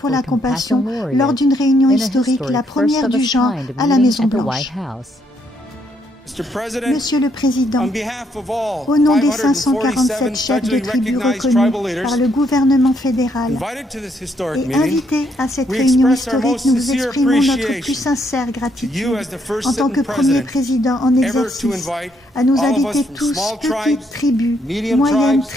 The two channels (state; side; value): normal; both; correlation 0.73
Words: la compassion, lors d'une réunion historique, la première du genre à la Maison-Blanche. Monsieur le Président, au nom des 547 chefs de tribus reconnus par le gouvernement fédéral et invités à cette réunion historique, nous vous exprimons notre plus sincère gratitude en tant que premier président en exercice à nous inviter tous, petites tribus, moyennes